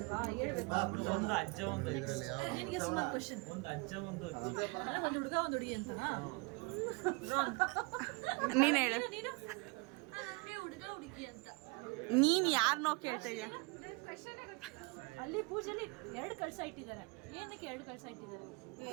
ಹೇಳ್ಬೇಕು. ಒಂದು ಅಜ್ಜ ಒಂದು ನಿನಗೆ ಸುಮಾರು ಕ್ವಶನ್. ಒಂದು ಅಜ್ಜ ಒಂದು ಒಂದು ಹುಡುಗ ಒಂದು ಹುಡುಗಿ ಅಂತನಾ? ನೀನು ಹೇಳು, ನೀನು ಹುಡುಗ ಹುಡುಗಿ ಅಂತ. ನೀನು ಯಾರನ್ನೋ ಕೇಳ್ತಾ ಇದೆಯಾ? ಅಲ್ಲಿ ಪೂಜೆಲಿ 2 ಕಳ್ಸ ಇಟ್ಟಿದ್ದಾರೆ. ಏನಕ್ಕೆ 2 ಕಳ್ಸ ಇಟ್ಟಿದ್ದಾರೆ?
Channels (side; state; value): left; quieter; 28.8 dB